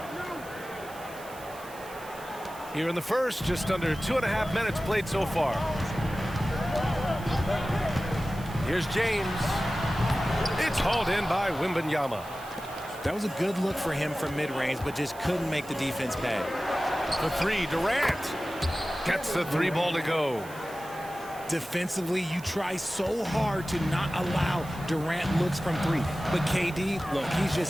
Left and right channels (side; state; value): right; noise; hiss, 19 dB below the sound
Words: Here in the first, just under 2.5 minutes played so far. Here's James. It's hauled in by Wembanyama. That was a good look for him from mid-range, but just couldn't make the defense pay. For three, Durant gets the three ball to go. Defensively, you try so hard to not allow Durant looks from three. But KD, look, he's just